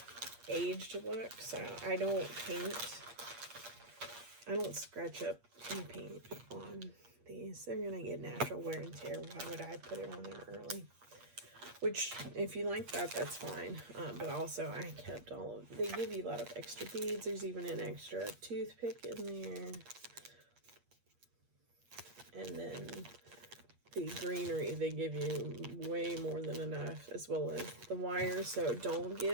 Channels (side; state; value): left; late; 8.5 ms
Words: aged look, so I don't paint. I don't scratch up and paint on these. They're going to get natural wear and tear. Why would I put it on there early? Which, if you like that, that's fine. But also, I kept all of, they give you a lot of extra beads. There's even an extra toothpick in there. And then the greenery, they give you way more than enough, as well as the wire. So don't